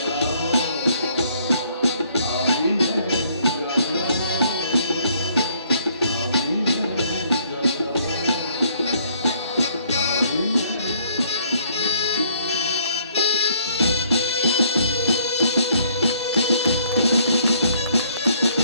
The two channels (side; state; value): both; inverted; correlation -0.64